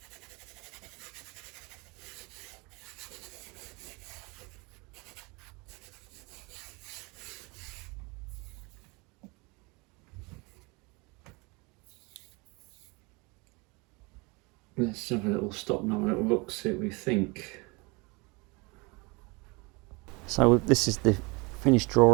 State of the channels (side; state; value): left; quieter; 27.2 dB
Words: Let's have a little stop now, a little look, see what we think. So this is the finished